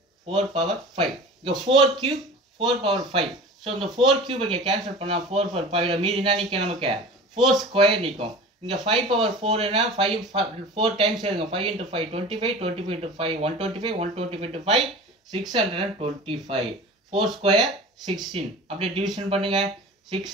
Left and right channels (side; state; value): both; normal; correlation 0.37